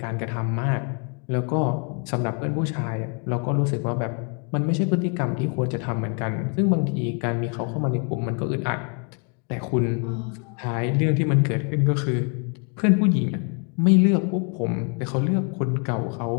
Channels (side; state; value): right; quieter; 39.2 dB